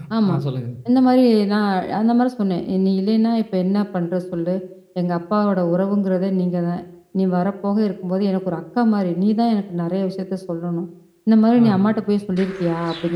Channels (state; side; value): identical; both; correlation 1.00